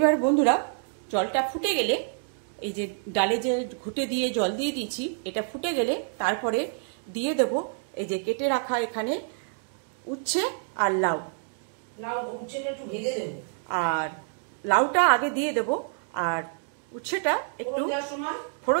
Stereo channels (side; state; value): left; silent; digital silence